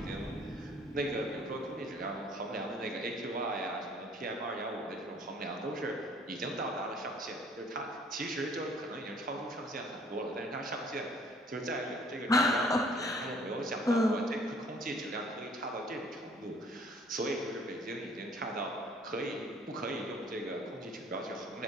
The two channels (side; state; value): both; normal; correlation 0.57